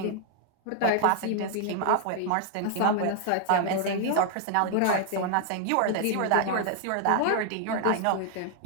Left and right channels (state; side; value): different; both; correlation 0.00